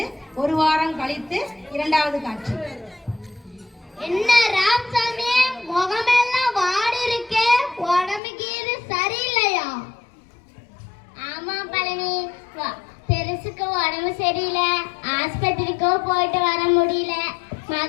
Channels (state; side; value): drops out; right; at 8.2 s